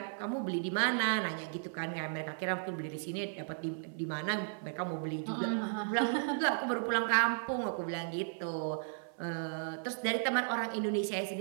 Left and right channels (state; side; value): silent; left; 54 dB below the other